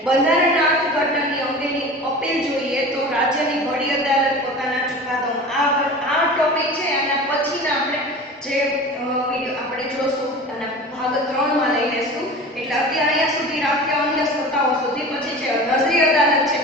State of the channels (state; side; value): normal; both; correlation 0.36